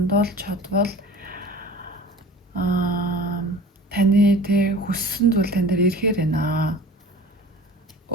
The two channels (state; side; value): normal; both; correlation 0.41